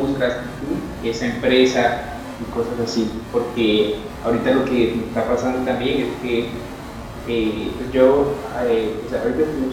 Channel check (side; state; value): both; identical; correlation 1.00